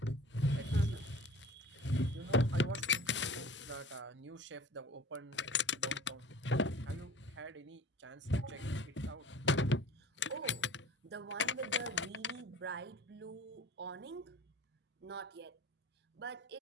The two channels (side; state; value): both; normal; correlation 0.42